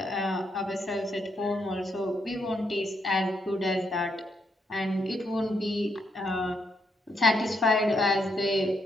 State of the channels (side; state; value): both; normal; correlation 0.77